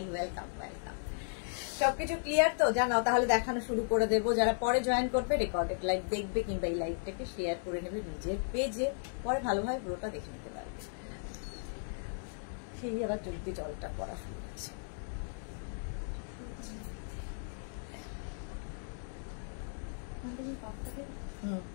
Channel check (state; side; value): silent; right; digital silence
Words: ওয়েলকাম ওয়েলকাম। সবকিছু ক্লিয়ার তো? জানাও, তাহলে দেখানো শুরু করে দেবো। যারা পরে জয়েন করবে, রেকর্ডেড লাইভ দেখবে, কিংবা এই লাইভটাকে শেয়ার করে নেবে নিজের পেজে, পরে ভালোভাবে পুরোটা দেখে নিতে পারবে। সেই আবার জলদি জলটা পড়া শুরু হচ্ছে।